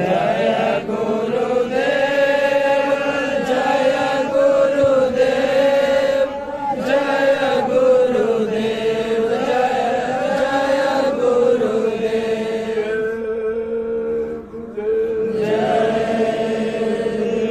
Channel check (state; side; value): identical; both; correlation 1.00